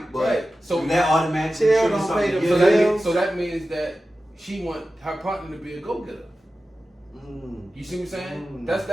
but Right. So that automatically Chill triggers don't something pay the to bill. get so that means that she want her partner to be a go-getter. You see what I'm saying?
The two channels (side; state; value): both; normal; correlation 0.94